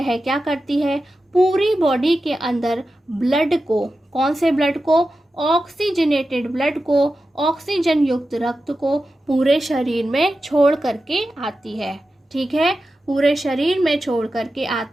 क्या करती है? पूरी बॉडी के अंदर ब्लड को, कौन से ब्लड को, ऑक्सीजनेटेड ब्लड को, ऑक्सीजन युक्त रक्त को पूरे शरीर में छोड़ करके आती है। ठीक है, पूरे शरीर में छोड़ करके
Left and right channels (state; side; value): normal; both; correlation 0.92